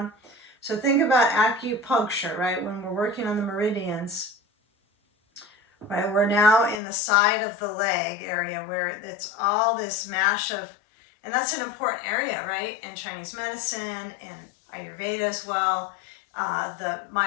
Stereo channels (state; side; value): drops out; right; at 6.8 s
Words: So think about acupuncture, right? When we're working on the meridians, right? We're now in the side of the leg area where it's all this mash of, and that's an important area, right? In Chinese medicine and Ayurveda as well. The